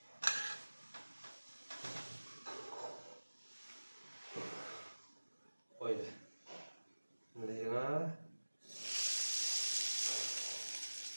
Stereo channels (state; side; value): inverted; both; correlation -1.00